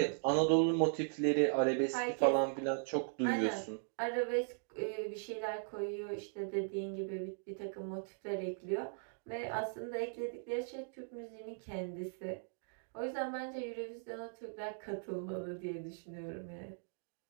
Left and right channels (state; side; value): silent; left; digital silence